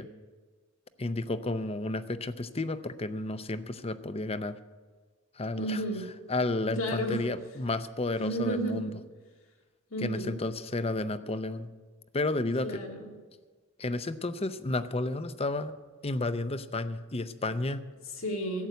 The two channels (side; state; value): both; normal; correlation 0.44